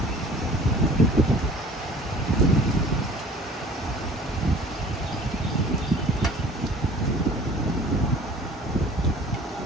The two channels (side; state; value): both; normal; correlation 0.48